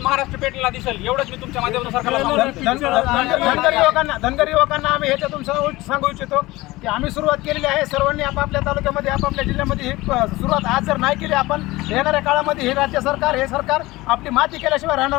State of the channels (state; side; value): quieter; right; 19.8 dB